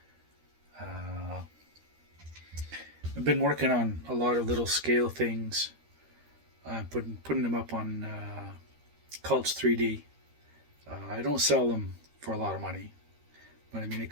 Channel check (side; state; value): left; late; 13 ms